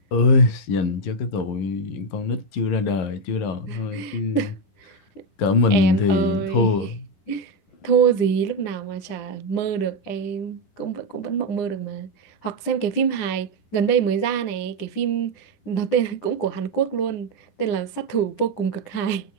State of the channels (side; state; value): right; late; 9.9 ms